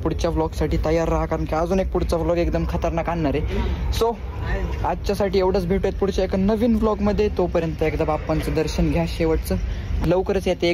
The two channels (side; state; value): both; identical; correlation 1.00